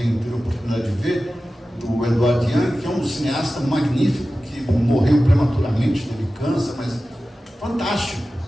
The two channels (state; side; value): normal; both; correlation 0.95